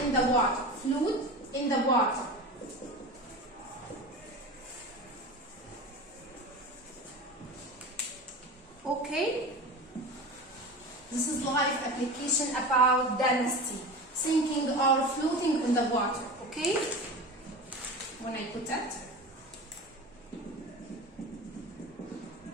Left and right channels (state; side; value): normal; both; correlation 0.30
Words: the water. Okay? This is life application about density, sinking or floating in the water. Okay? When I put that,